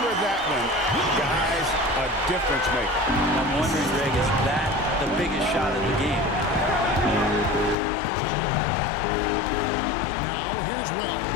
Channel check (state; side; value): drops out; right; at 7.8 s